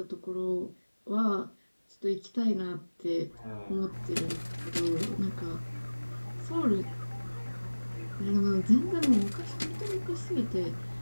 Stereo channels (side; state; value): both; inverted; correlation -1.00